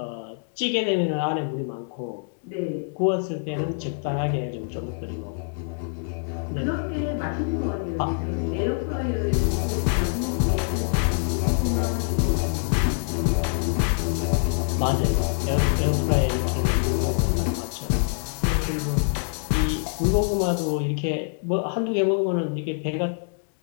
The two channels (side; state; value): right; silent; digital silence